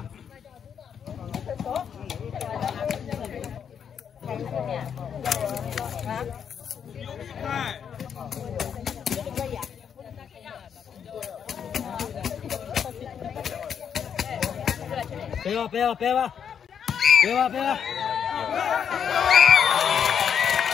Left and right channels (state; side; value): quieter; right; 7.8 dB